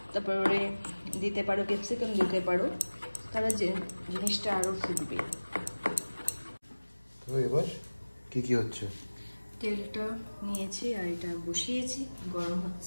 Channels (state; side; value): inverted; both; correlation -1.00